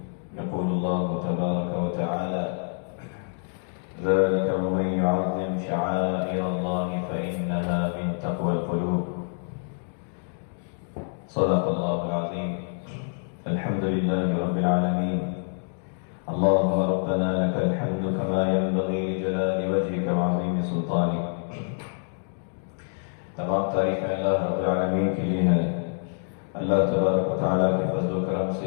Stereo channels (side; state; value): right; silent; digital silence